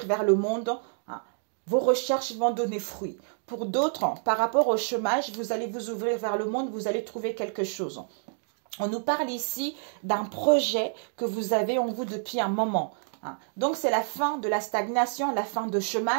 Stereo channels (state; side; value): silent; left; 59 dB below the other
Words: vers le monde. Vos recherches vont donner fruit. Pour d'autres, par rapport au chômage, vous allez vous ouvrir vers le monde, vous allez trouver quelque chose. On nous parle ici d'un projet que vous avez en vous depuis un moment. Donc, c'est la fin de la stagnation, la fin de